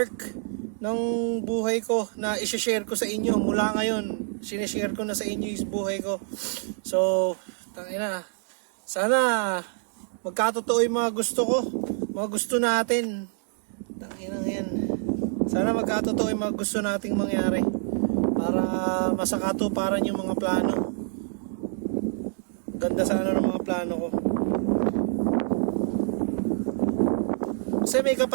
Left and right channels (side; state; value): left; silent; 56 dB below the other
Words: ng buhay ko na i-share ko sa inyo mula ngayon. Sinishare ko na sa inyo yung buhay ko. So, tangina. Sana magkatotoo yung mga gusto ko. Mga gusto natin. Tangina yan. Sana magkatotoo yung mga gusto nating mangyari. Para masakatuparan yung mga plano. Ganda sana ng mga plano ko. Kasi may